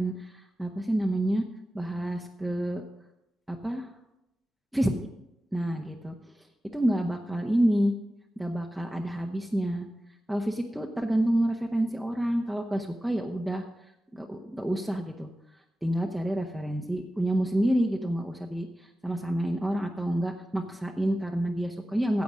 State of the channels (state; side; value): normal; both; correlation 0.94